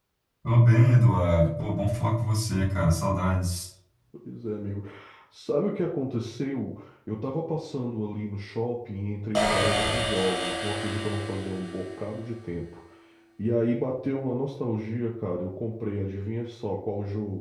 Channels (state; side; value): identical; both; correlation 1.00